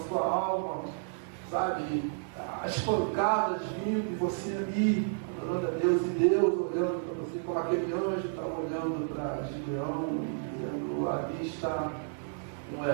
sua alma, sabe? As pancadas vindo e você ali adorando a Deus, e Deus olhando para você, como aquele anjo está olhando para Gideão, dizendo: ali está um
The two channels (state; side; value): silent; left; digital silence